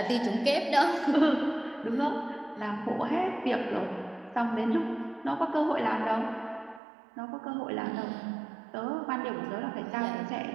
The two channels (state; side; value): drops out; left; at 6.8 s